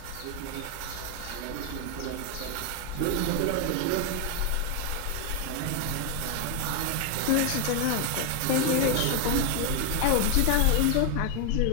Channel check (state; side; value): different; both; correlation 0.01